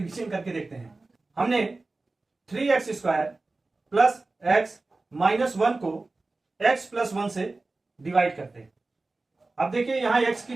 करके देखते हैं। हमने 3x² प्लस x माइनस 1 को x प्लस 1 से डिवाइड करते हैं। अब देखिए यहां x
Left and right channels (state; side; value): quieter; left; 3.4 dB